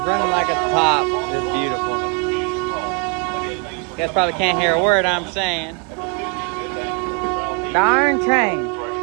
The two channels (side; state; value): left; quieter; 35.5 dB